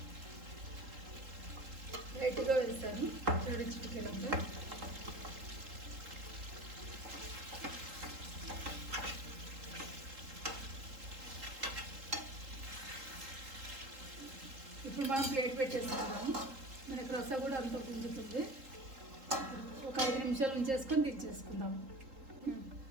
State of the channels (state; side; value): late; left; 3.8 ms